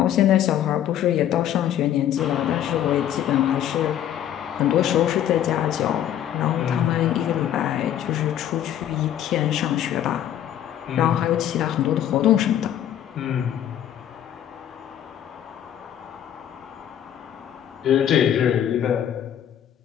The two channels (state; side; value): quieter; right; 10.8 dB